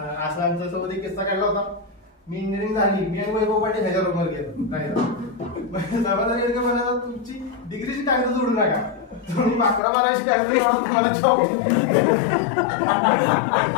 आमच्या सोबत एक किस्सा काढला होता. मी इंजिनिअरिंग झाली, मी आणि वैभव पाटील ह्याच्या रूमवर गेलो राहायला. समाधान गेलं म्हणाला तुमची डिग्रीची कागद जोडू नका, तुम्ही 11-12ची कागद तुम्हाला जॉब.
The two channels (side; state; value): right; drops out; at 9.8 s